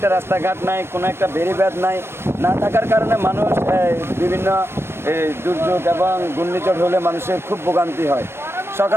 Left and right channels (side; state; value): left; late; 0.12 ms